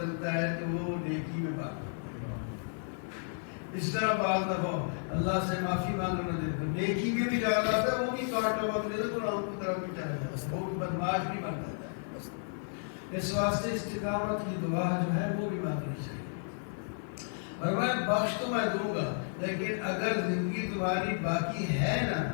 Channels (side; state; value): right; silent; 56 dB below the other